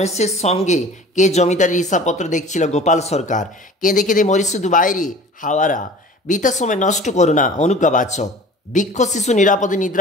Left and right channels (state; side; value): normal; both; correlation 0.43